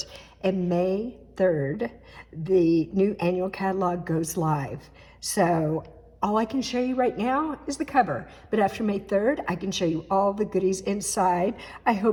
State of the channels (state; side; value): identical; both; correlation 1.00